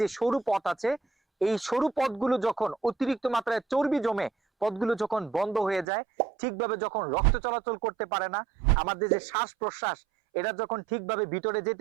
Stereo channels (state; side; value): drops out; left; at 5.9 s